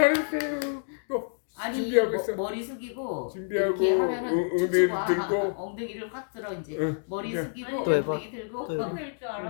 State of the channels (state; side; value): silent; right; digital silence